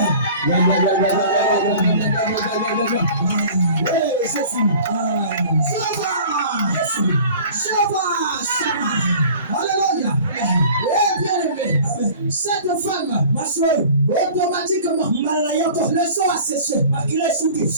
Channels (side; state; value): both; inverted; correlation -0.44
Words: Alléluia. Eh bien aimé, cette femme, ma soeur, automatiquement, le sang a séché. La Bible